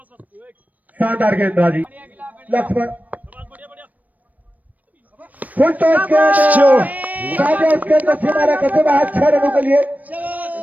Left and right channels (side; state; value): left; late; 0.076 ms